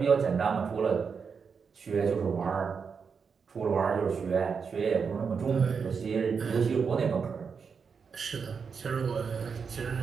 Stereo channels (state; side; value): quieter; left; 5.9 dB